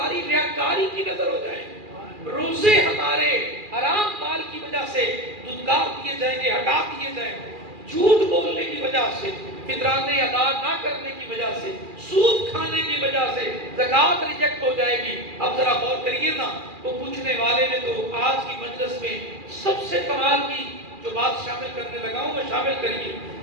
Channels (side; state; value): left; late; 2.4 ms